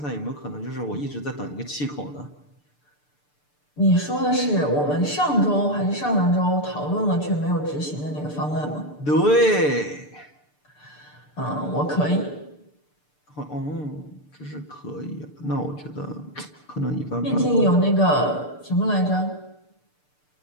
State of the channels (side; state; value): right; late; 6.8 ms